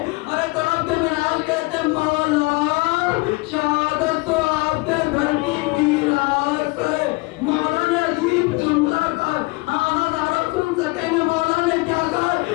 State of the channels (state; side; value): quieter; right; 24.8 dB